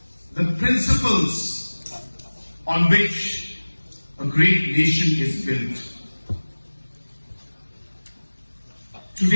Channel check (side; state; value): both; inverted; correlation -1.00